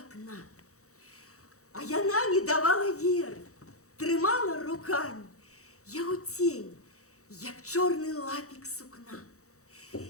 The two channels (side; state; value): right; late; 0.65 ms